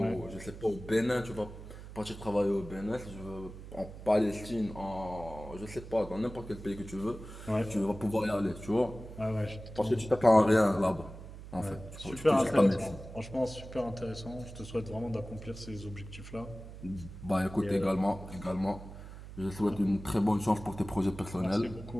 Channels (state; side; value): noise; right; hum, 13 dB below the sound